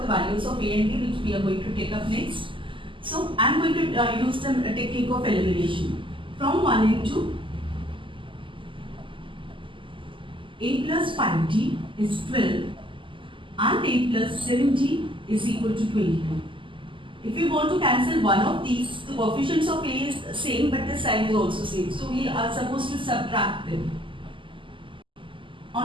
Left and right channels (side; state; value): left; late; 0.25 ms